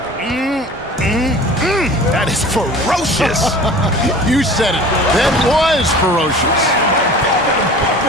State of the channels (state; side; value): normal; both; correlation 0.42